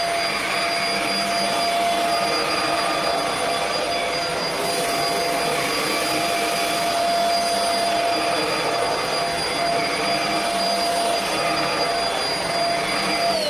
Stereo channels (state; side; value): noise; left; hum, 25 dB below the sound